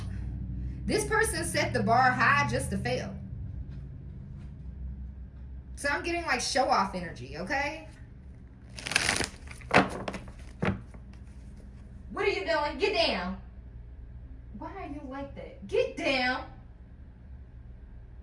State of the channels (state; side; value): identical; both; correlation 1.00